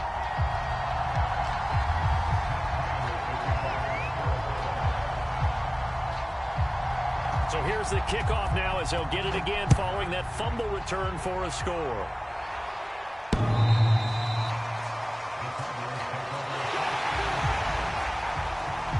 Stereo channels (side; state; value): both; identical; correlation 1.00